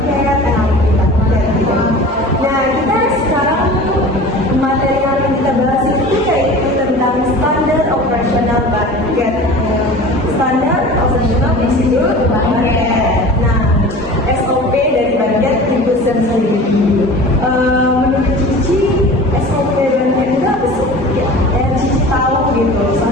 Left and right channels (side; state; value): both; normal; correlation 0.39